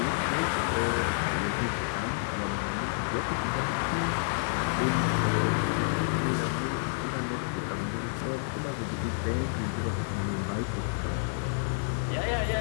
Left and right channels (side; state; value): right; silent; 58 dB below the other